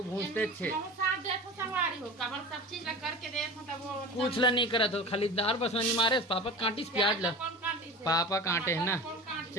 भूंजते छे कुछ ला नहीं करत हो खाली दार बस नहीं मारे पापा कांटी से प्याज ला पापा कांटे है ना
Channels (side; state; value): both; normal; correlation 0.34